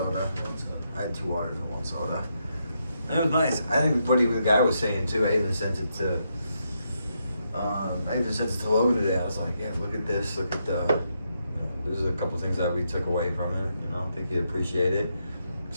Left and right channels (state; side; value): inverted; both; correlation -0.81